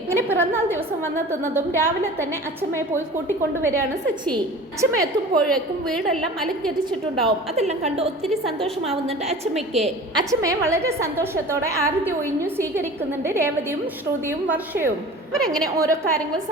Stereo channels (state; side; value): normal; both; correlation 0.39